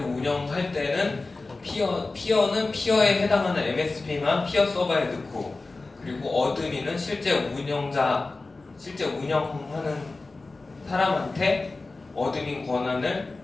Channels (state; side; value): quieter; right; 3.5 dB